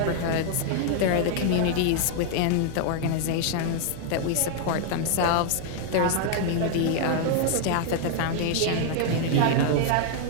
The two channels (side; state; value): both; different; correlation 0.00